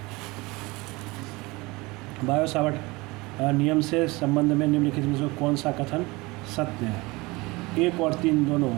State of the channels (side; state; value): left; quieter; 23.4 dB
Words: बायो-सावर्ट नियम से संबंध में निम्नलिखित में से कौन सा कथन सत्य है, 1 और 3 दोनों